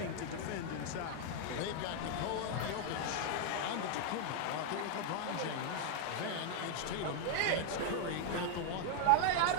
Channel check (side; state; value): both; different; correlation 0.00